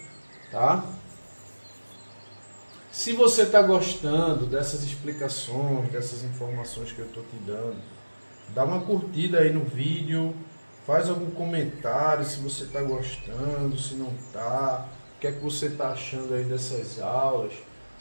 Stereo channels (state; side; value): inverted; both; correlation -1.00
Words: tá? Se você está gostando dessas explicações, dessas informações que eu estou te dando, dá uma curtida aí no vídeo, faz algum comentário se você está gostando, se não está, o que é que você está achando aí dessas aulas,